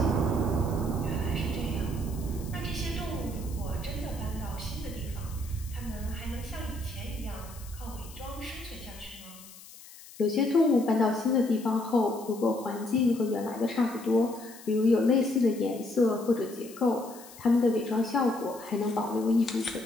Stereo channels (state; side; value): noise; left; hiss, 19 dB below the sound